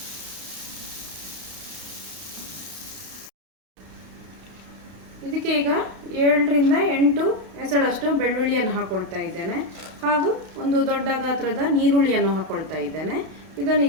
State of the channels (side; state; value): left; late; 32 ms